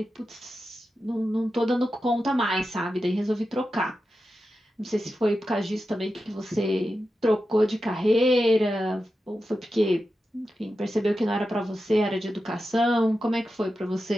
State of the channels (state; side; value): normal; both; correlation 0.91